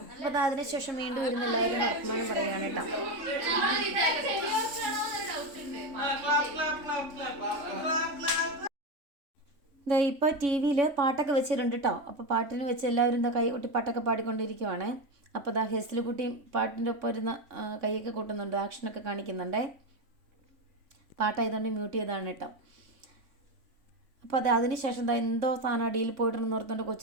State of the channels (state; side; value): late; left; 3.5 ms